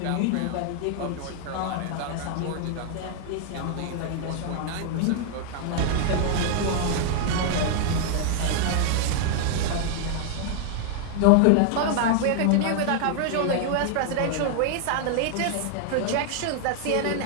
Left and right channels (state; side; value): different; both; correlation 0.00